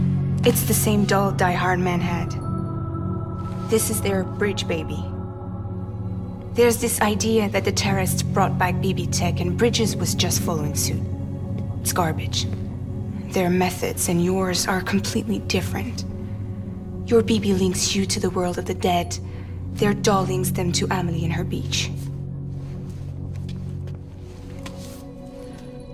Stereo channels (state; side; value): identical; both; correlation 1.00